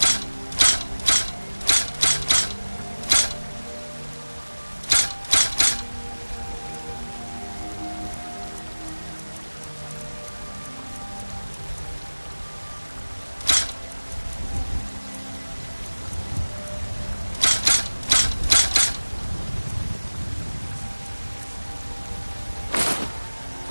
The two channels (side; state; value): both; inverted; correlation -1.00